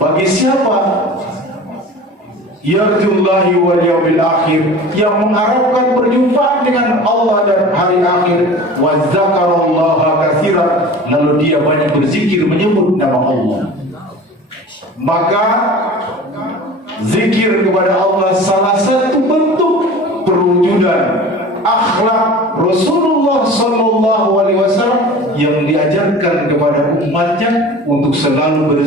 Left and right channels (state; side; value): normal; both; correlation 0.39